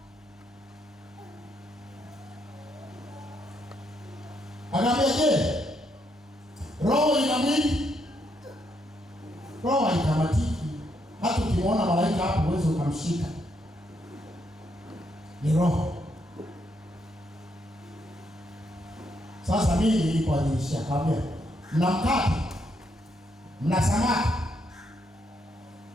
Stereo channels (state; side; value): normal; both; correlation 0.76